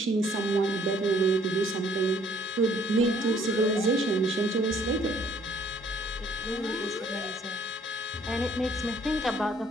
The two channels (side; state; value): both; normal; correlation 0.61